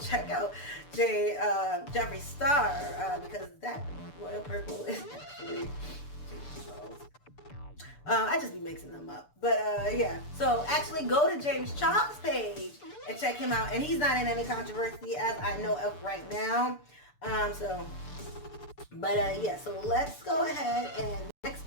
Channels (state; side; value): late; right; 6.8 ms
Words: out Jeffree Star, because that royal purple is actually James Charles. I just be mixing them up. But yeah, so actually go to James Charles' page and check him out. And he's not in any controversy as I know of right now. Yeah, so let's go ahead and next